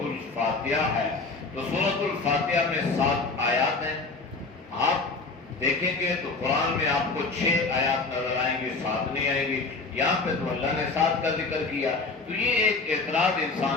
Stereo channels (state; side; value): quieter; right; 3.9 dB